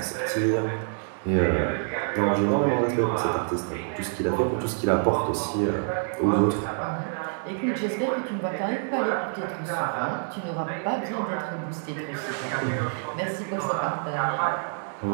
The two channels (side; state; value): left; silent; 60 dB below the other